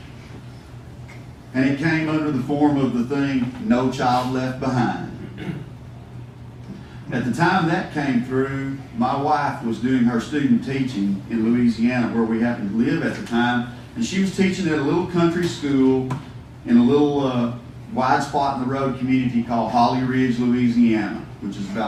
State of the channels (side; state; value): both; identical; correlation 1.00